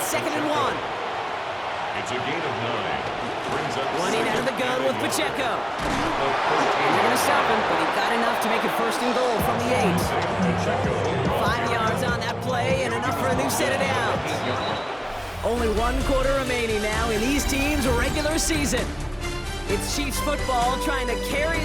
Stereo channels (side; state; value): both; identical; correlation 1.00